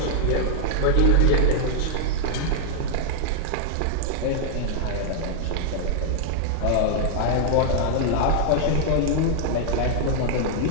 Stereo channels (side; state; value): both; different; correlation -0.01